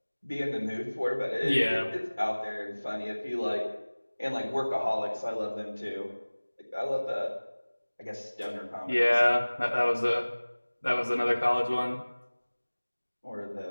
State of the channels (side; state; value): both; inverted; correlation -1.00